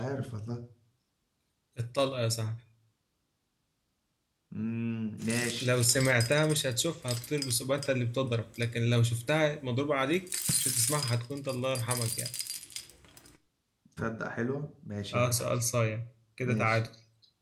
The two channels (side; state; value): both; identical; correlation 1.00